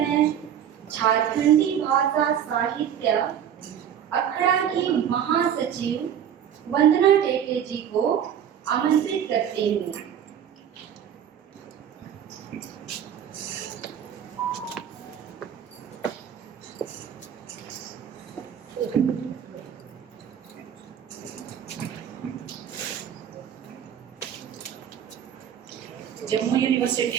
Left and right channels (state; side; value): quieter; left; 9.2 dB